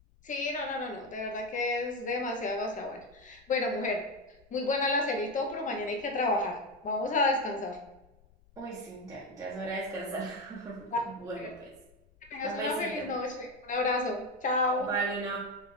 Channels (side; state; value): left; noise; rumble, 28 dB below the sound